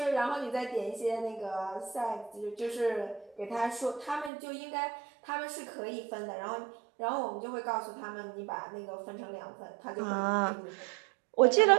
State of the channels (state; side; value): drops out; left; at 4.3 s